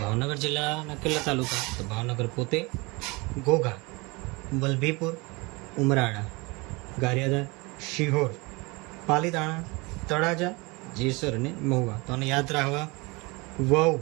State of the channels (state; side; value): quieter; left; 26.0 dB